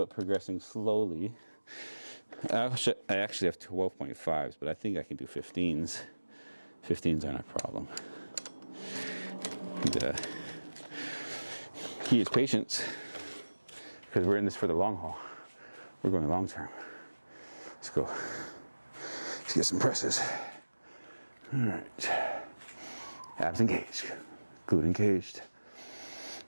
progressing slowly. I actually have 12.5s, but I think I can do 15s. 15s aren't a problem. The key is patience, because we're in this for the long haul. We're going long term. Let's go. Let's get some presses. All right. Abs engaged. Glute engaged.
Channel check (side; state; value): both; inverted; correlation -1.00